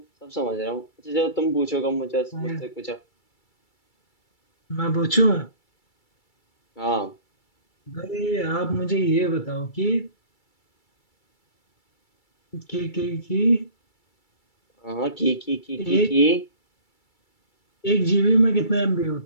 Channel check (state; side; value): late; right; 2.3 ms